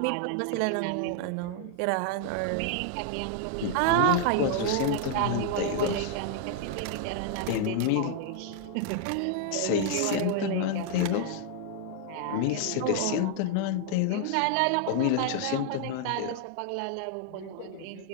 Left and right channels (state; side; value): different; both; correlation 0.00